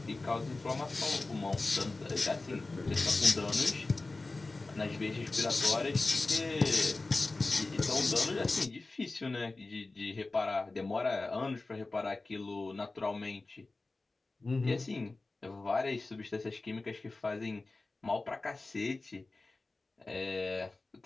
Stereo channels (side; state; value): right; quieter; 3.3 dB